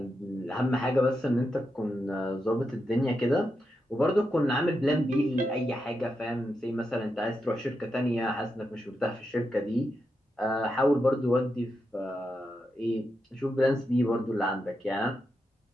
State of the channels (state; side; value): normal; both; correlation 0.86